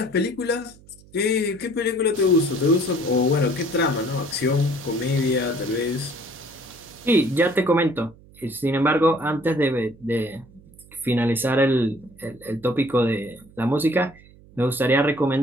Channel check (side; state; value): right; noise; hum, 25 dB below the sound